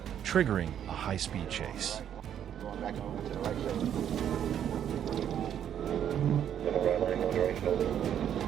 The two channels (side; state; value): left; quieter; 9.6 dB